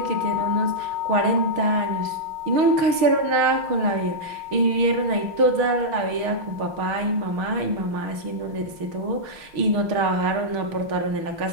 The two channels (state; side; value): late; left; 6.4 ms